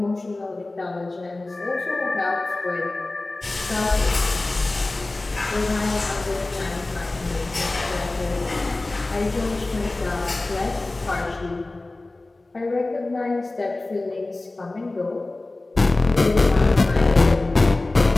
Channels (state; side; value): quieter; right; 3.0 dB